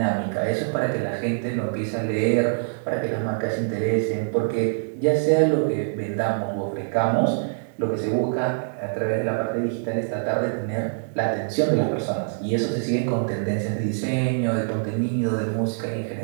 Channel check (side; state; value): left; silent; digital silence